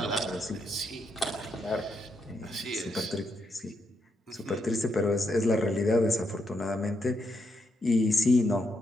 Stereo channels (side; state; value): both; normal; correlation 0.80